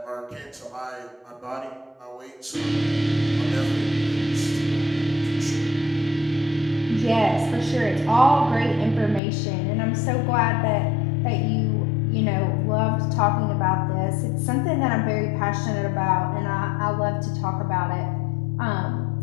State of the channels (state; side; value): drops out; right; at 9.2 s